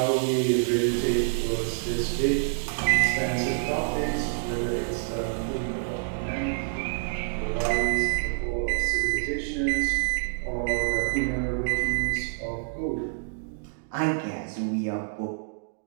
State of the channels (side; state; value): left; silent; digital silence